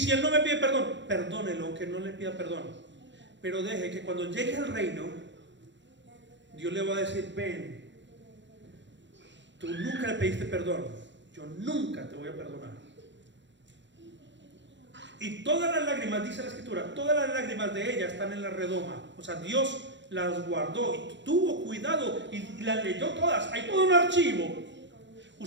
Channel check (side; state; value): left; late; 0.53 ms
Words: él no me pide perdón, perdónelo, aunque no le pida perdón. Pero deje que cuando llegue al reino, Dios le va a decir, ven, tú nunca le pediste perdón, yo nunca te voy a perdonar. Y todas las lágrimas, dice la escritura, todas las lágrimas de ella están en la redoma. O sea, Dios las guardó y tuvo cuidado y las leyó todas. Hay todo un archivo.